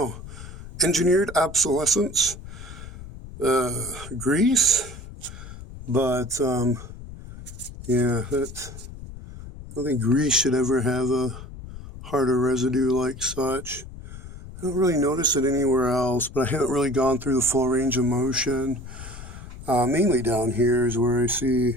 engineered obsolescence, grease, but, yeah, that's, I don't think grease should ever have a harder residue like such. I don't really notice it anywhere else, but I haven't really gone through the full range of motion. Mainly down here is where I see,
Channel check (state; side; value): noise; left; rumble, 14 dB below the sound